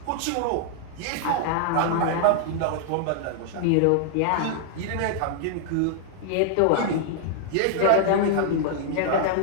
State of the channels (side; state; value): both; different; correlation 0.00